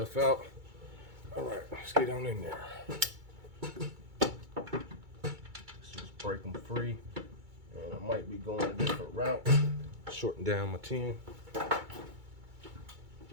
out. All right, let's get on in there. Let's just break them free. And I might be going a different route. Shorten down my 10.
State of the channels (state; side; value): late; left; 2.3 ms